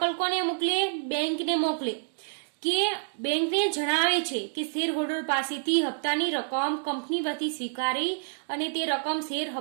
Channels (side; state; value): left; silent; digital silence